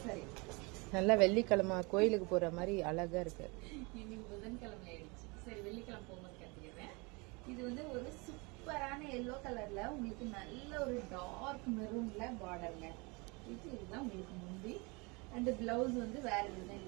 சாரி நல்லா வெள்ளிக்கிழமை கோயிலுக்கு போற மாதிரி அழகா இருக்கு. இன்னைக்கு புதன்கிழமை ஆயிடுச்சு. சரி, வெள்ளிக்கிழமை போகும்போது கட்டிக்கிறேன். இது வந்து ஒரு சூப்பரான எல்லோ கலர்ல உங்களுக்கு நல்ல ஒரு டார்க் மெரூன்ல பார்டர்ங்க. இதுதான் உங்களுக்கு முந்தி அண்ட் பிளவுஸ் வந்து வேற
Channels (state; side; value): quieter; left; 28.1 dB